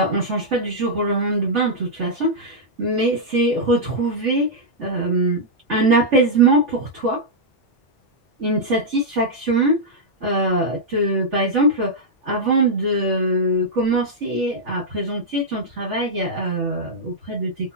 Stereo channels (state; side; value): normal; both; correlation -0.07